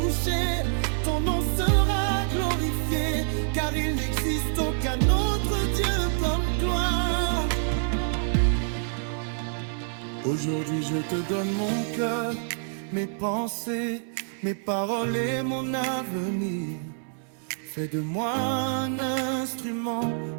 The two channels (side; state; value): left; silent; 60 dB below the other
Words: Ton nom sera glorifié, car il n'existe aucun autre Dieu comme toi. Aujourd'hui je te donne mon cœur, mes pensées, mes paroles et mon avenir. Fais de moi un instrument